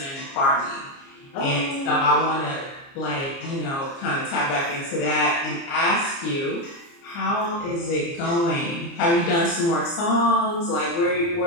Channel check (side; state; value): right; late; 29 ms